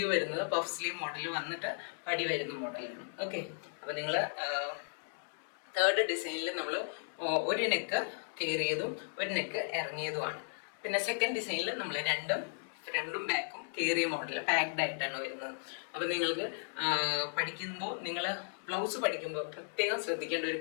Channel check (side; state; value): right; silent; digital silence